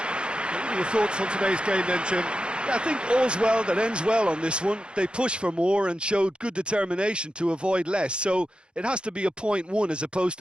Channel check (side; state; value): left; late; 0.054 ms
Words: are your thoughts on today's game then, Jim? I think all's well that ends well on this one. They pushed for more and showed good determination to avoid less, so it has to be a point won as opposed